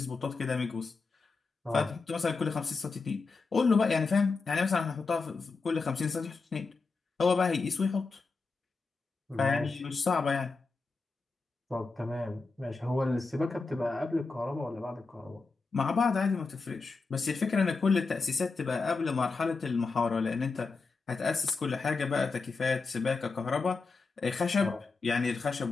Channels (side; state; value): right; quieter; 4.2 dB